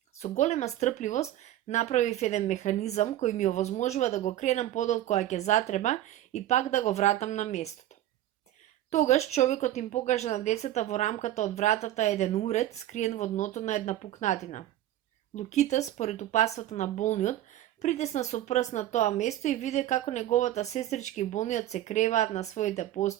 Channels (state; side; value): quieter; left; 13.3 dB